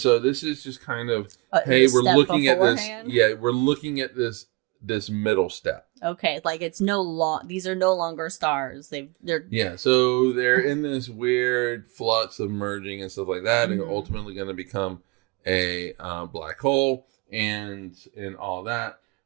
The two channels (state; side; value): quieter; left; 25.8 dB